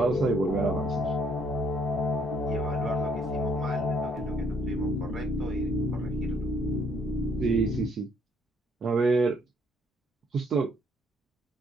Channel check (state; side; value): normal; both; correlation 0.66